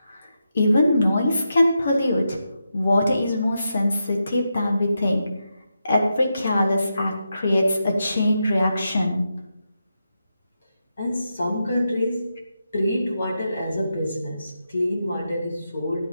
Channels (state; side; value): inverted; both; correlation -0.86